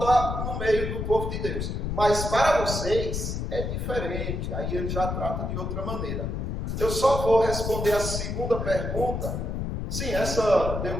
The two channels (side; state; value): left; noise; rumble, 3 dB below the sound